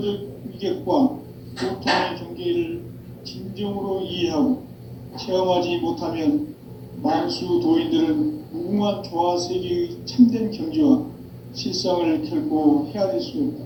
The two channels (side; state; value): both; identical; correlation 1.00